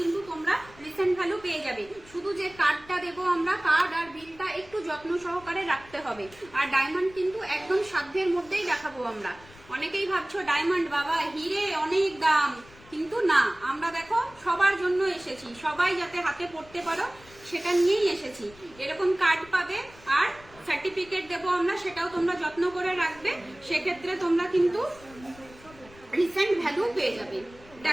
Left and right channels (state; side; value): noise; left; rumble, 23 dB below the sound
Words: কিন্তু তোমরা রিসেন্ট ভ্যালু পেয়ে যাবে, শুধু যে কার্ডটা দেবো আমরা, কার্ড আর বিলটা একটু যত্ন সহকারে রাখতে হবে। আর ডায়মন্ড কিন্তু একদম সাধ্যের মধ্যেই দেখাবো আমরা। অনেকেই ভাবছো ডায়মন্ড বাবা হিরে অনেক দাম, কিন্তু না, আমরা দেখো সবার জন্য এসেছি, সবাই যাতে হাতে পড়তে পারো সেটা নিয়েই এসেছি। এরকম কার্ড পাবে আর সার্টিফিকেট দেবো আমরা, সেটাও তোমরা যত্ন করে রাখবে, সেক্ষেত্রে তোমরা কিন্তু রিসেন্ট ভ্যালু পেয়ে যাবে।